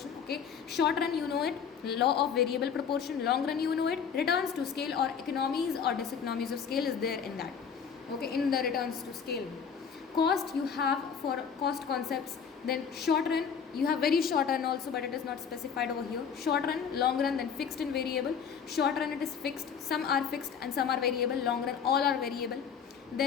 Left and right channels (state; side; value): quieter; right; 6.9 dB